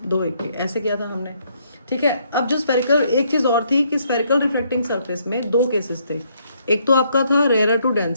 2 एक के, ऐसे किया था हमने, ठीक है। अब जो स्फेरिकल, एक चीज और थी कि स्फेरिकल रिफ्रैक्टिंग सरफेस में 2 केसेस थे। एक तो आपका था रेयर टू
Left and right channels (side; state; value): both; inverted; correlation -0.70